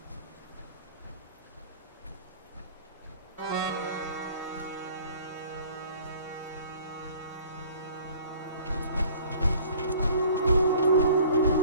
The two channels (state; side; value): inverted; both; correlation -0.50